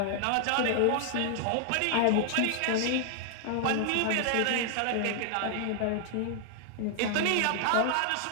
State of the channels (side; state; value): both; different; correlation 0.00